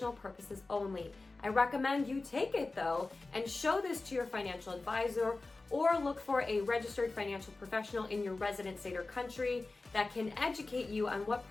purposes only. I recommend you take it though and show this to your financial advisor, or look for a registered financial professional in your resident state or country that can educate you on what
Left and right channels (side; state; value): right; quieter; 3.4 dB